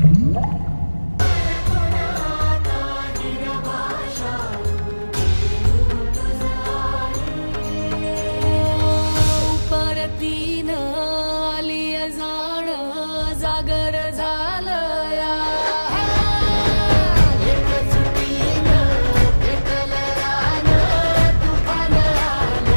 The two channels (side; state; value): both; inverted; correlation -1.00